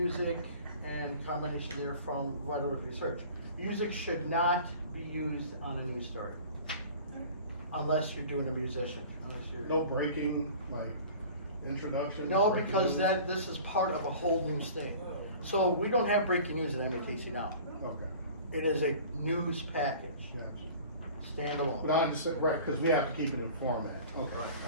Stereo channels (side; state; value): both; inverted; correlation -0.43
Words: and combination therefrom vital research. Music should not be used on a news story unless you're doing a musician. No breaking, like introduction. No, because this is part of a whole news thing. So we don't have breaking news at MATC now. Okay. It is a news package. Gotcha. Standalone. But I'm just right because we have to keep it in format. Okay. Right.